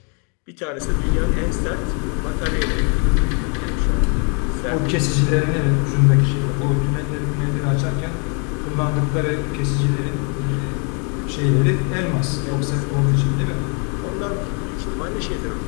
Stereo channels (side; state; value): right; quieter; 37.3 dB